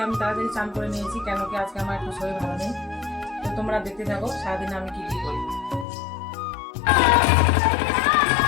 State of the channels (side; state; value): right; drops out; at 5.9 s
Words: আমি তাড়াতাড়ি চান করে নিয়েছি, কেন কি আজকে আমার একটু শরীর ভালো নেই। তো তোমরা দেখতে থাকো সারাদিনে আমি কি কি করি।